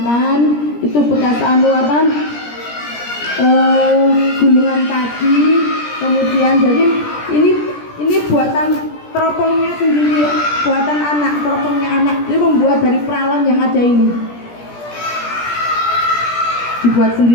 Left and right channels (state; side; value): late; right; 17 ms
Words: Itu bekas gulungan tadi. Kemudian jadi ini buatan teropongnya sendiri, buatan anak, teropongnya anak. Ini membuat dari peralon yang ada ini. Dibuat